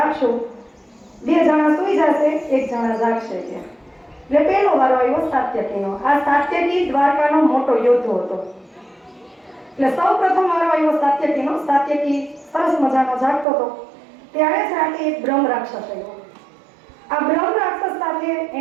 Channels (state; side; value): drops out; left; at 13.5 s